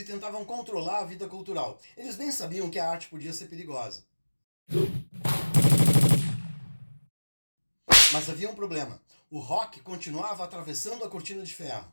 tentavam controlar a vida cultural. Eles bem sabiam que a arte podia ser perigosa. Mas havia um problema. O rock continuava atravessando a cortina de ferro.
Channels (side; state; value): both; inverted; correlation -1.00